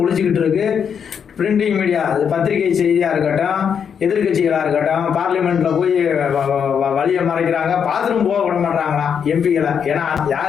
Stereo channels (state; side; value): quieter; right; 7.4 dB